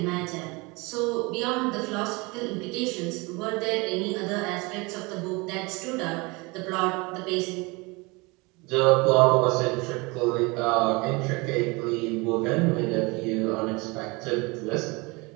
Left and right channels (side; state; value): left; quieter; 26.2 dB